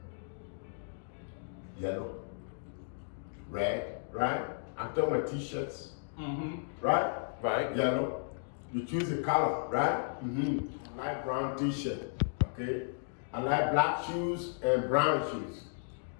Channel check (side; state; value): right; silent; digital silence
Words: Yellow, red, right? I'm talking about t-shirts, right? Right. Yellow. You choose a color, right? Mm-hmm. Light brown t-shirt, okay? I like black shoes and brown shoes.